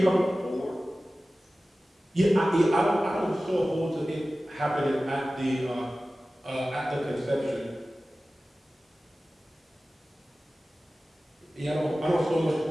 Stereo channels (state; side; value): normal; both; correlation 0.96